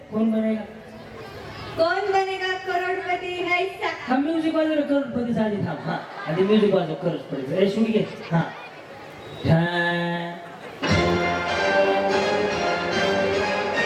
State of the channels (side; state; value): both; identical; correlation 1.00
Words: कोण बनेगा? कौन बनेगा करोडपती करोडपती हैसा. हा म्युझिक वाजव करोडपती झाली थांब हा आणि म्युझिक वाजव करोडपती ए शुनी घे हा